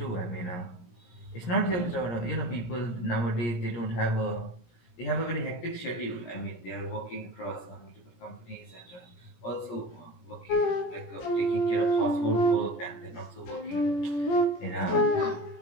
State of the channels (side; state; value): right; late; 17 ms